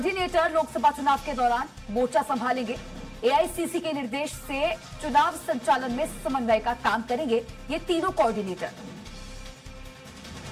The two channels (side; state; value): both; identical; correlation 1.00